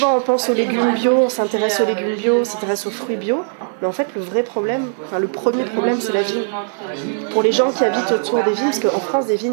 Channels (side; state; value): left; silent; digital silence